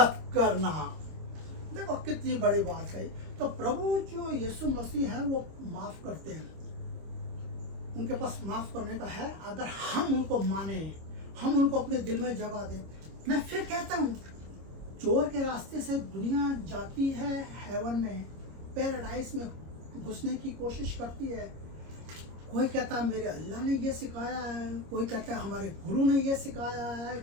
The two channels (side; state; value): left; late; 25 ms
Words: करना। देखो कितनी बड़ी बात है। तो प्रभु जो यीशु मसीह है वो माफ करते हैं, उनके पास माफ करने का है, अगर हम उनको माने, हम उनको अपने दिल में जगह दें। मैं फिर कहता हूँ, चोर के रास्ते से दुनिया जाती है हेवन में, पैराडाइज में घुसने की कोशिश करती है। कोई कहता है मेरे अल्लाह ने ये सिखाया है, कोई कहता है हमारे गुरु ने ये सिखाया है,